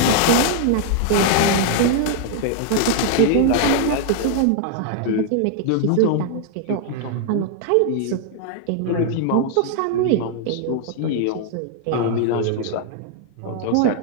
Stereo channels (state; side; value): different; both; correlation 0.00